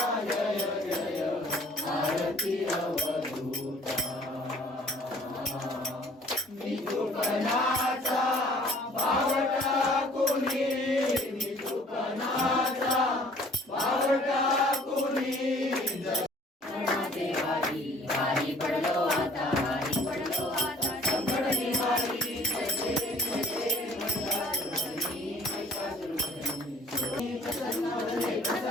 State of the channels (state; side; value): normal; both; correlation 0.54